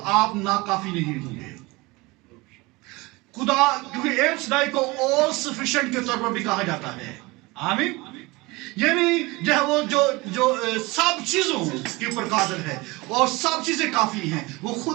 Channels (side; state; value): left; quieter; 23.3 dB